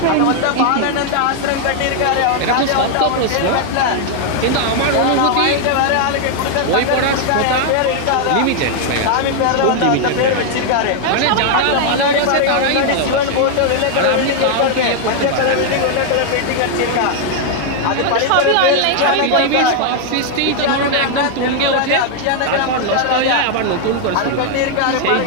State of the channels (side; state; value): both; different; correlation 0.00